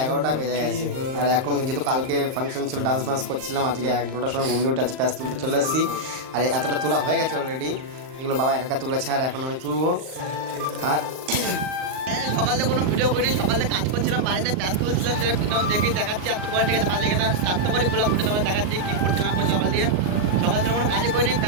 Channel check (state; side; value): late; left; 38 ms